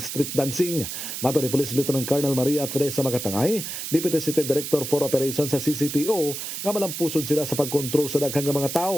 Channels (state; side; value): noise; right; hiss, 6 dB below the sound